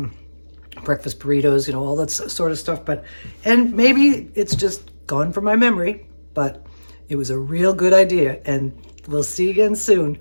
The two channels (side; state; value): both; inverted; correlation -1.00